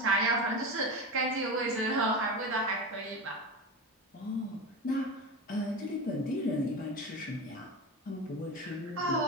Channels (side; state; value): both; normal; correlation 0.24